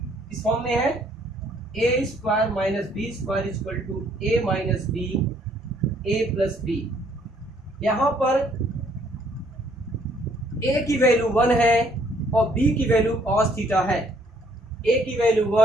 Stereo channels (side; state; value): both; normal; correlation 0.64